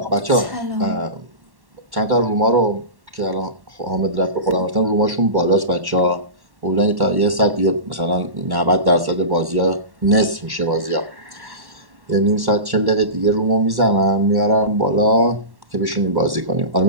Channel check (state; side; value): late; left; 1.1 ms